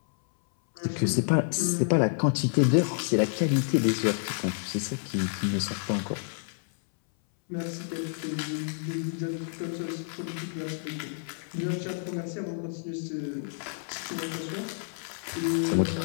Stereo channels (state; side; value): silent; right; 59 dB below the other